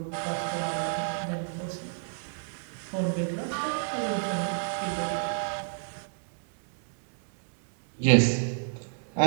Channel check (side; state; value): left; silent; digital silence